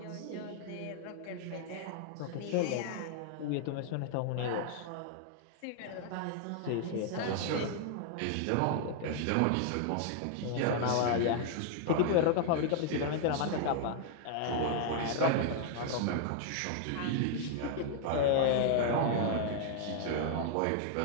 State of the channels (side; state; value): both; different; correlation 0.00